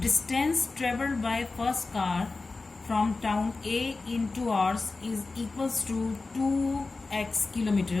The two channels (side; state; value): right; quieter; 3.7 dB